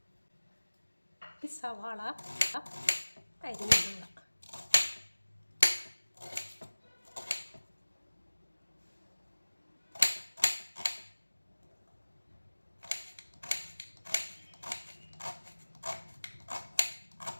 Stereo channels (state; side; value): inverted; both; correlation -1.00